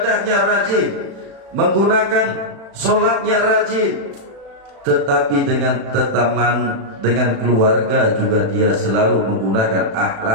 rajin, menggunakan sholatnya rajin, tetapi dengan teman, dengan keluarga juga dia selalu menggunakan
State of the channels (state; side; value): late; left; 36 ms